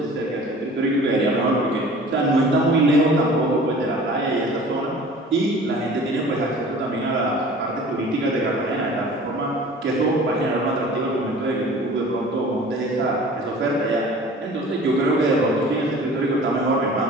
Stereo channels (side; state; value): both; normal; correlation 0.44